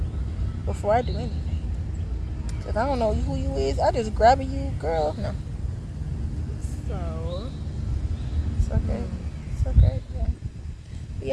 before I do anything. If I don't know who you is, I just grab you, girl. No. So It's okay. It's okay. Yeah. But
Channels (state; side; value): identical; both; correlation 1.00